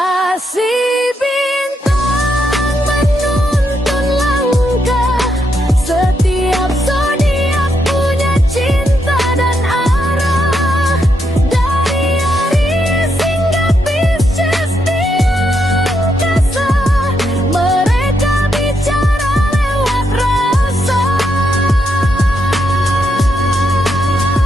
bintang menuntun langkah, setiap zodiak punya cinta dan arah. Dari Aries hingga Pisces di angkasa, mereka bicara lewat rasa.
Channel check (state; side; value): normal; both; correlation 0.80